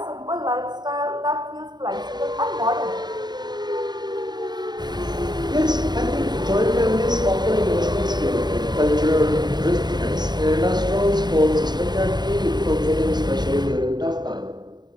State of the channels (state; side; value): late; left; 0.20 ms